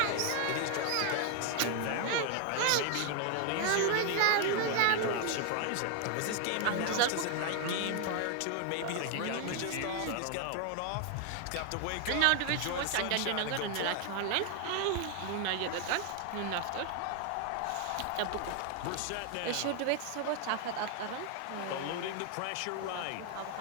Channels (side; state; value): both; different; correlation 0.00